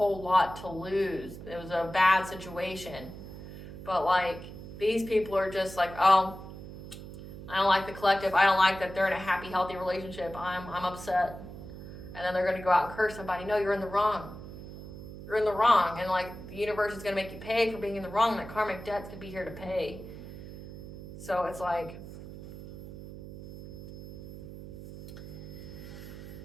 lot to lose. It was a bad situation. But like, these people are just like, oh, I don't like the collective. I don't like that they're in a happy, healthy relationship. I'm upset. And then they're going to go out and curse somebody. No, you're in the wrong. You're in the wrong. And like, the universe is going to make you pay for being in the wrong. That karmic debt's going to be here to pay. So it's like,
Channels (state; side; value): noise; right; hum, 13 dB below the sound